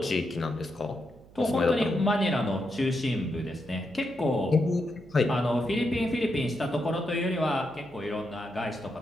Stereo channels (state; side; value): noise; right; hum, 23 dB below the sound